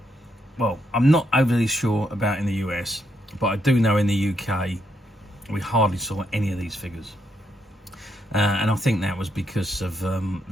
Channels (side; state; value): both; normal; correlation 0.78